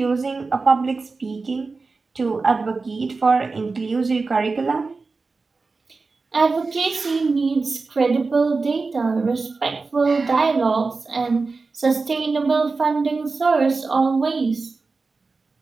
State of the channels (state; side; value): quieter; left; 4.1 dB